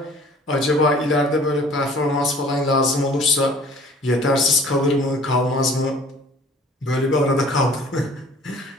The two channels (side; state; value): both; normal; correlation 0.51